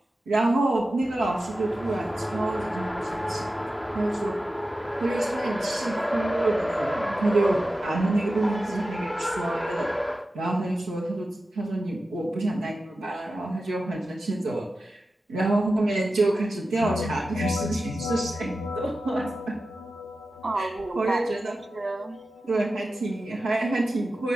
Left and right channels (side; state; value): both; normal; correlation 0.93